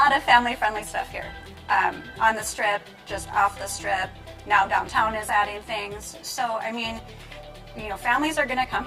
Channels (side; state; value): both; identical; correlation 1.00